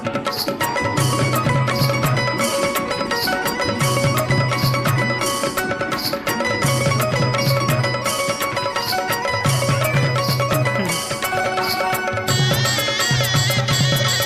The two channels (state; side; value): noise; right; hum, 28 dB below the sound